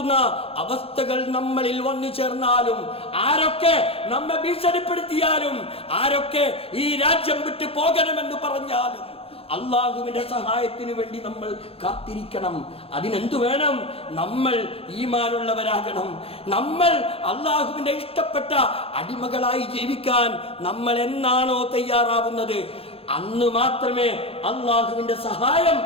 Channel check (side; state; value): right; late; 0.28 ms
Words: അവസ്ഥകൾ നമ്മളിൽ വന്നു ചേർന്നാലും, ആരൊക്കെ നമ്മെ ഭീഷണിപ്പെടുത്തിയാലും, ആരൊക്കെ ഈ രാജ്യം വിട്ടു പോകണമെന്ന് പറഞ്ഞാലും, അള്ളാഹുവിന്റെ സഹായത്തിന് വേണ്ടി നമ്മൾ കാത്തിരിക്കണം. അതിനെന്തു വേണം? നമ്മൾ ഈമാനുള്ളവരാകണം. നമ്മൾ അള്ളാഹുവിന്റെ ഇഷ്ടപ്പെട്ട അടിമകളായി ജീവിക്കാൻ നമ്മൾ എന്നാണോ തയ്യാറാവുന്നത്, അന്ന് മാത്രമേ അള്ളാഹുവിന്റെ സഹായം